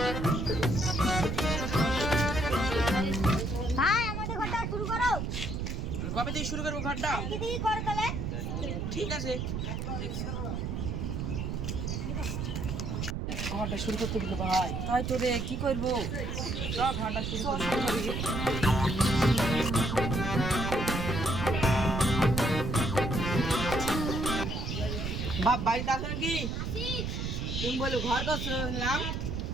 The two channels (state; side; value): noise; right; rumble, 2 dB below the sound